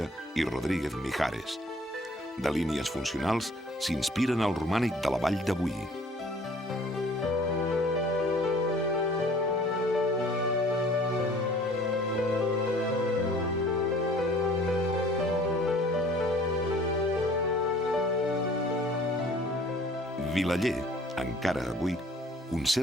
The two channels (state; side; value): normal; both; correlation 0.52